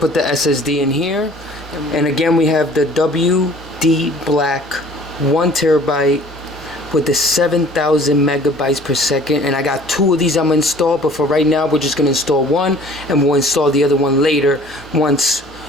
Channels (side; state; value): both; normal; correlation 0.51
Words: the SSD in here. And again, we have the WD Black 1 terabyte with the 7,000 megabytes per second. And I got two of these I'm gonna install, but for right now, we're just gonna install one, and we'll install the other one later once